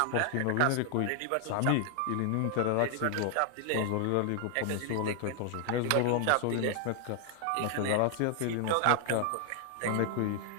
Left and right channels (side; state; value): both; different; correlation 0.00